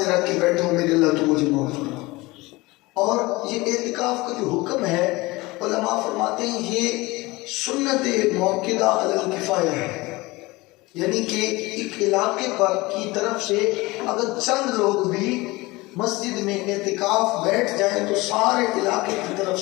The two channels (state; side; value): quieter; right; 21.9 dB